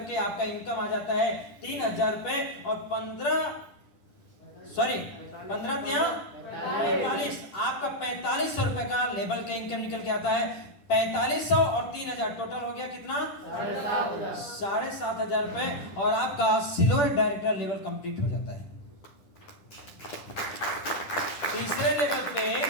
आपका इनकम आ जाता है 3,000 रुपए, और 15 45 आपका 4,500 रुपए का लेवल का इनकम निकल के आता है। 4,500 और 3,000 टोटल हो गया कितना? 7,500 रुपए, और आपका सिल्वर डायरेक्टर लेवल कंप्लीट हो जाता है। तीसरे लेवल पे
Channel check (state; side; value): late; right; 10 ms